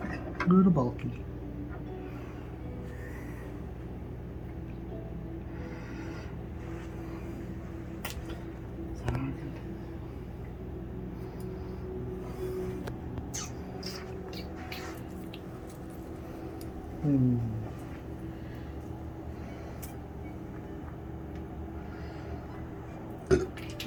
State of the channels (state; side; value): identical; both; correlation 1.00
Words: A little bulky.